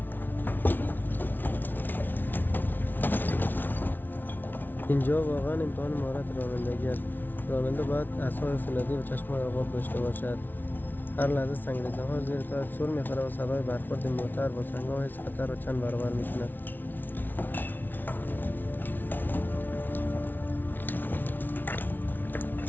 اینجا واقعا امتحان مهارت رانندگی است. راننده باید اعصاب فولادی و چشم‌های آباب داشته باشد. هر لحظه سنگریزه‌ها زیر تایش سر می‌خورد و صدای برخورد موتر با سنگ‌ها حس خطر را چند برابر می‌کند.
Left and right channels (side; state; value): right; late; 0.089 ms